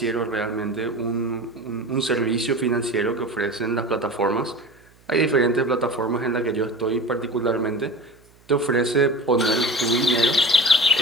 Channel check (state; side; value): noise; right; hum, 30 dB below the sound